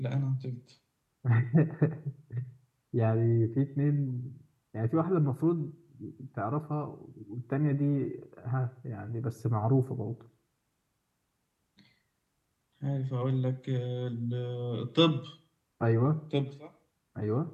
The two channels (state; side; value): identical; both; correlation 1.00